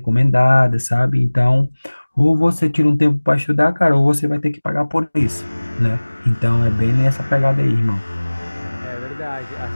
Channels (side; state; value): both; inverted; correlation -1.00